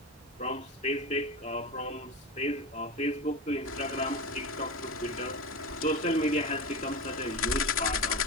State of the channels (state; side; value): normal; both; correlation 0.23